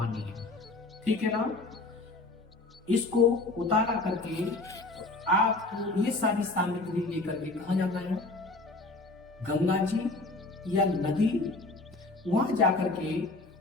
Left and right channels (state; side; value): quieter; right; 3.1 dB